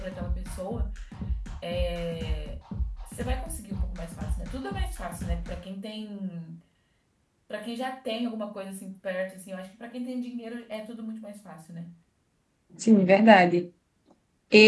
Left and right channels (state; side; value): identical; both; correlation 1.00